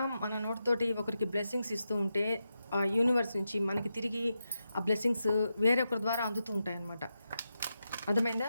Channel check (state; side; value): inverted; both; correlation -0.87